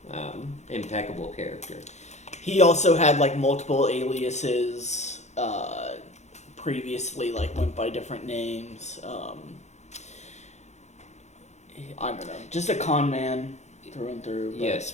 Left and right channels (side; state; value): right; late; 0.33 ms